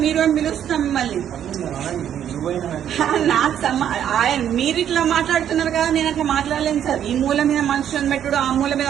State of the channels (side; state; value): left; quieter; 9.8 dB